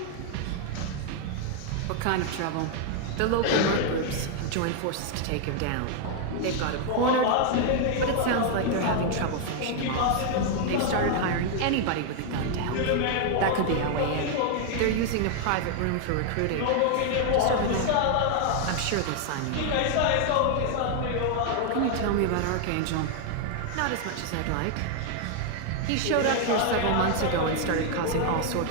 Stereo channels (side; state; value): both; different; correlation 0.00